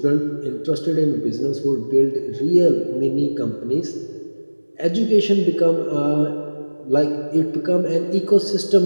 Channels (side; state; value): both; inverted; correlation -1.00